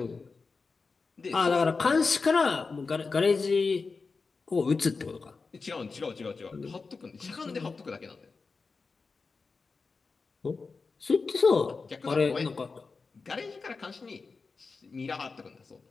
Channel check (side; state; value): right; quieter; 4.4 dB